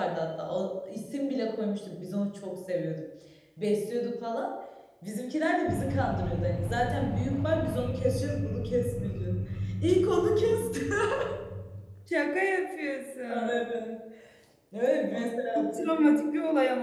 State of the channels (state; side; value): identical; both; correlation 1.00